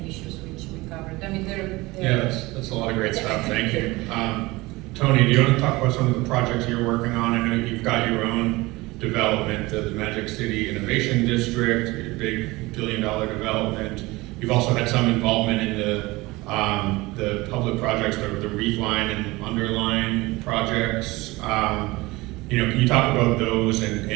issues which we covered. I mean, yeah, that's a lot of great stuff. Thank you. Tony, do you want to talk about some of the projects you're working on? I know you've got your own development, the Magic City Innovation District, your big $1 billion development. You've also had some involvement in the public projects, the reef line and underline projects. Can you talk about those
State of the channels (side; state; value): left; quieter; 21.4 dB